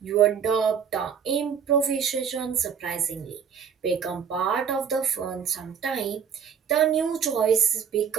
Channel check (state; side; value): quieter; left; 7.4 dB